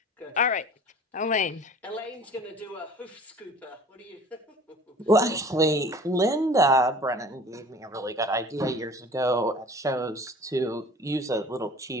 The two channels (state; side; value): normal; both; correlation 0.46